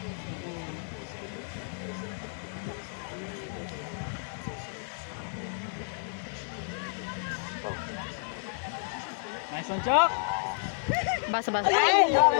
Nice one, Chok! Basa.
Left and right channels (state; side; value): silent; right; 57 dB below the other